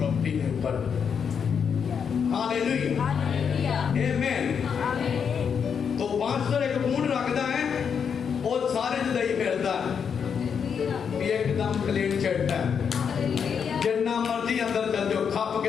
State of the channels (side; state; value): right; quieter; 6.9 dB